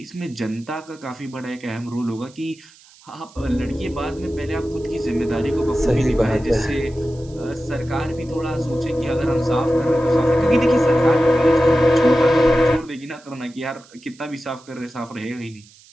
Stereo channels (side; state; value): right; noise; hiss, 26 dB below the sound